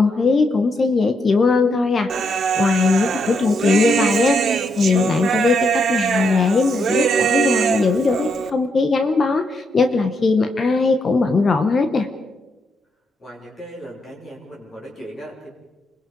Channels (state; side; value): normal; both; correlation 0.78